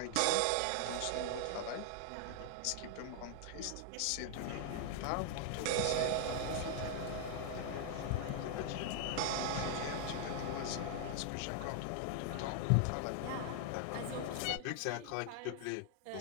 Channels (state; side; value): different; both; correlation 0.00